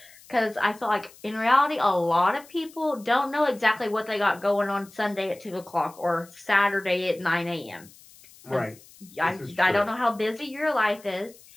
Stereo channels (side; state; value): left; noise; hiss, 24 dB below the sound